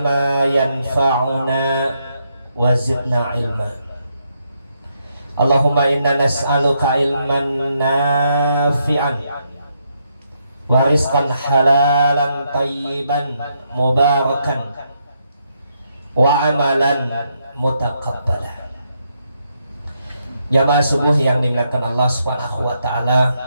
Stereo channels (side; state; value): both; inverted; correlation -0.78